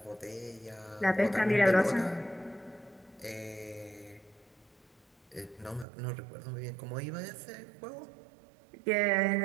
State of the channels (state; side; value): drops out; left; at 5.9 s